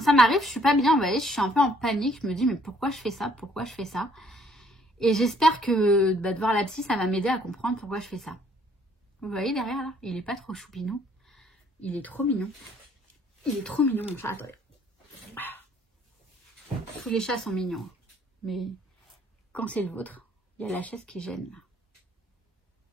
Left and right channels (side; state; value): both; normal; correlation 0.63